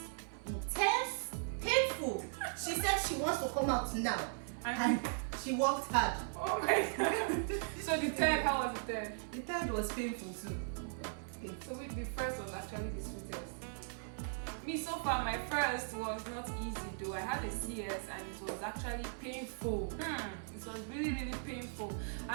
intense, painful. She said she wants to come out now. And she worked hard. Oh my god. So the third, how was the third? The third was painful too. So the first was actually the sweetest. Me, so far, my first was not easy though. I had a CS and it was actually painful. It was really, really painful.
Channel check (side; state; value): left; silent; 52 dB below the other